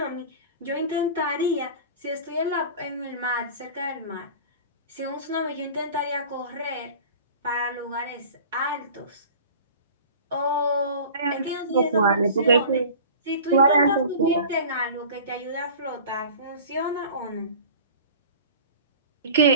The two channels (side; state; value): both; inverted; correlation -0.39